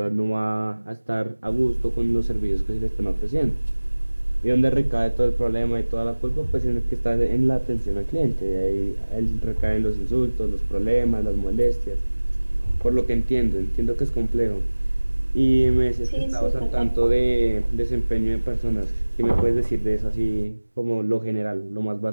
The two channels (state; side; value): inverted; both; correlation -1.00